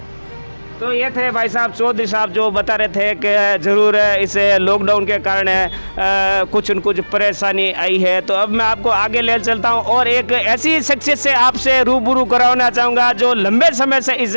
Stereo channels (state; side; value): inverted; both; correlation -1.00